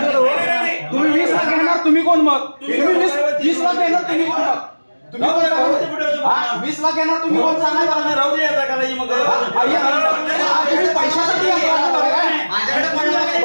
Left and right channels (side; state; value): both; inverted; correlation -1.00